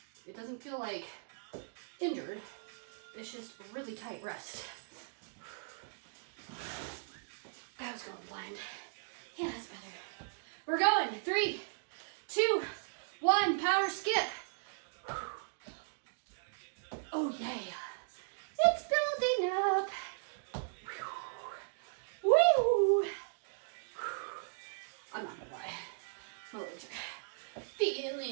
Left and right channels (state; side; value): silent; left; digital silence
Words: It doesn't feel like injured. It's just really tight rest. I was going blind. Yeah, that's better. We're going. 3, 2, 1. Power skip. Oh, yeah. It's building up. Woo! I'm not gonna lie. My legs are